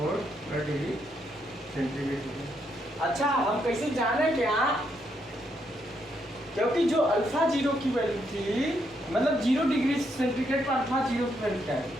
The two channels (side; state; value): both; normal; correlation 0.77